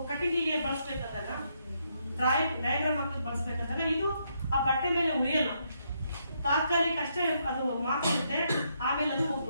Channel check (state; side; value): inverted; both; correlation -0.76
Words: ಕಟ್ಟಿಗೆಗೆ ಬಳಸ್ಬೇಕಂದಾಗ, ಡಯಾಗ್ರಾಮ್ ಹಾಕಿ ಬಳಸ್ಬೇಕಂದಾಗ ಇದು ಆ ಬಟ್ಟೆ ಮೇಲೆ ಉಳಿಯಲ್ಲ, ತಾತ್ಕಾಲಿಕ ಅಷ್ಟೇ ಅದು ಮಾತಾಡುತ್ತೆ, ಆಮೇಲೆ ಅದು